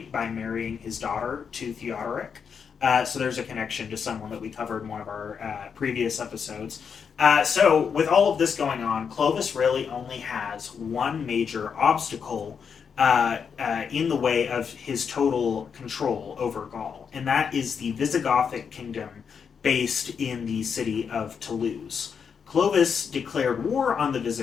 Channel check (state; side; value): quieter; right; 6.6 dB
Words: by marrying his daughter to Theodoric. So there's a connection to someone that we covered in one of our previous episodes. So with all of this going on, Clovis really only has one major obstacle in the way of his total control over Gaul, and that is the Visigothic kingdom based in the city of Toulouse. Clovis declared war on the